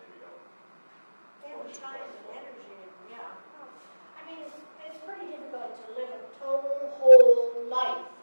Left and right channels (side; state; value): both; inverted; correlation -1.00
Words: don't. They have time and energy, and yeah. I mean, it's pretty difficult to live a total whole life